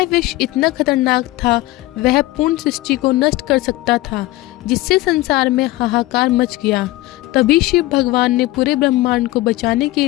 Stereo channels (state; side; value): quieter; right; 18.4 dB